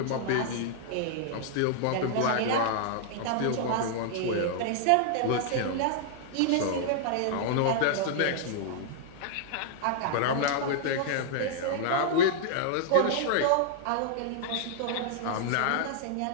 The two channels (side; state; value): both; different; correlation -0.01